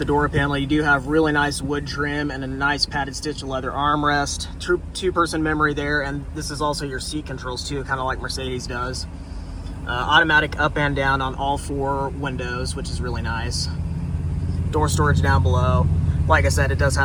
door panel, you do have really nice wood trim and a nice padded stitch leather armrest. Two-person memory there, and this is also your seat controls too, kind of like Mercedes does. Automatic up and down on all 4 windows, which is really nice. Door storage down below. Like I said, it does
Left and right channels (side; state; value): both; identical; correlation 1.00